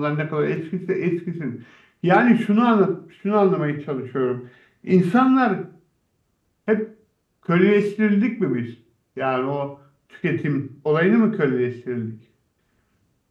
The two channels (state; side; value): identical; both; correlation 1.00